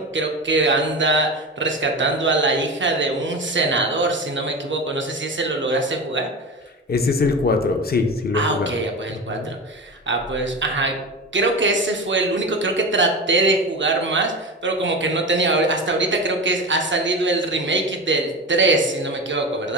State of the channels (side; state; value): both; normal; correlation 0.26